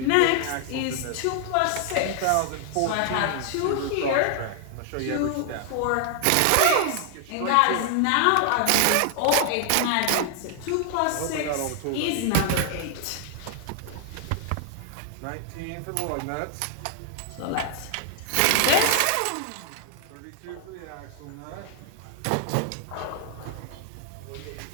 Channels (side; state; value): both; different; correlation 0.00